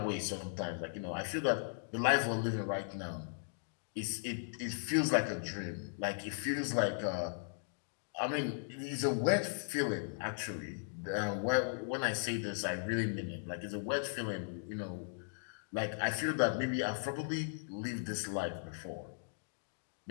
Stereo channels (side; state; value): right; silent; digital silence